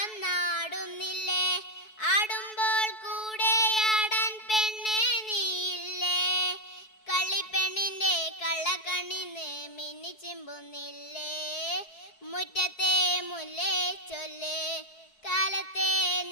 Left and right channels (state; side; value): late; right; 4.6 ms